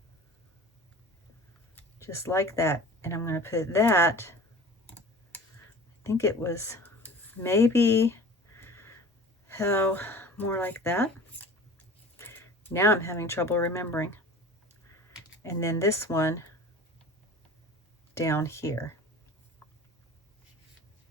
Just like that. And I'm going to put that, I think it was maybe, more like that. Now I'm having trouble remembering. And then this one down here.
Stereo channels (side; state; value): both; normal; correlation 0.40